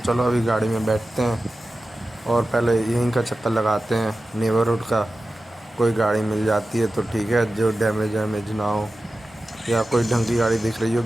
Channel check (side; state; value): both; normal; correlation 0.94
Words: चलो अभी गाड़ी में बैठते हैं और पहले यहीं का चक्कर लगाते हैं नेबरहुड का। कोई गाड़ी मिल जाती है तो ठीक है, जो डैमेज वैमेज ना हो, या कोई ढंग की गाड़ी दिख रही